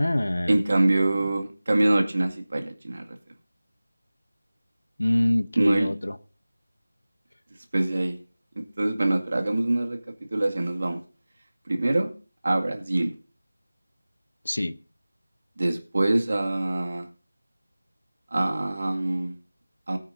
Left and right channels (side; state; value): both; inverted; correlation -0.98